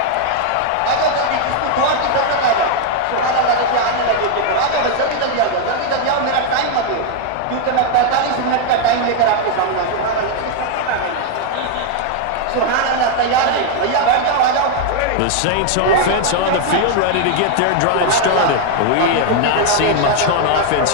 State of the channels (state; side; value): different; both; correlation 0.00